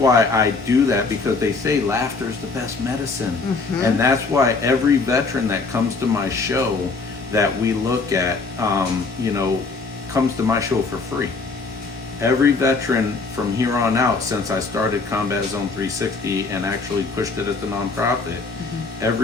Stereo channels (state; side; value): quieter; right; 4.1 dB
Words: I do that, because they say laughter is the best medicine. And that's why every veteran that comes to my show that we look at, you know, comes to my show for free. Every veteran from here on out, since I started Combat Zone 360 and actually pushed it as a nonprofit,